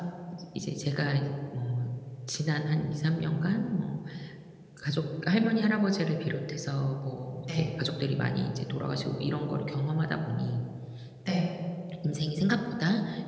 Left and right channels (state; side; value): identical; both; correlation 1.00